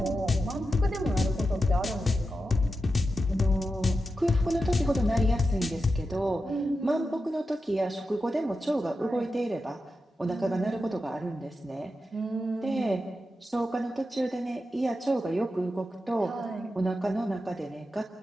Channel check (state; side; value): normal; both; correlation 0.90